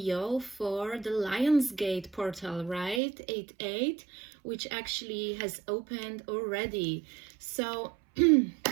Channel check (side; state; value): left; drops out; at 3.0 s